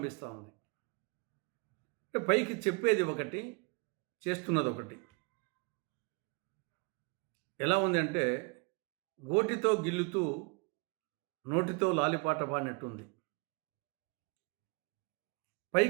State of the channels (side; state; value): left; quieter; 31.7 dB